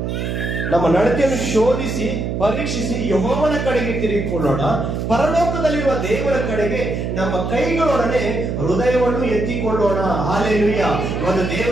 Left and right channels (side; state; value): right; noise; hum, 2 dB below the sound